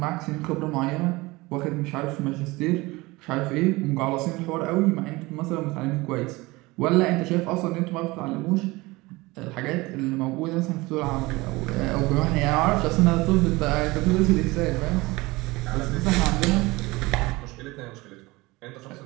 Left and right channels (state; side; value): quieter; left; 21.9 dB